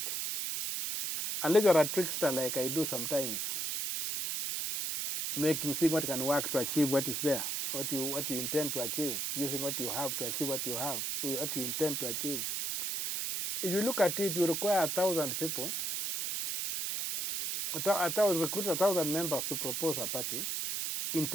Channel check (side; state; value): right; noise; hiss, 1 dB below the sound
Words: Unless you're a trickster like I do sometimes, seeing what can work to achieve what is there, what you intend to achieve, using what you have to achieve what you intend to achieve. If you look at it, you require 1,000 people. Recruit 1,000 members to propose a party in